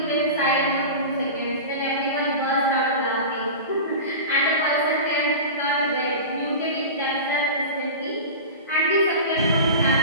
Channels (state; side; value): inverted; both; correlation -0.31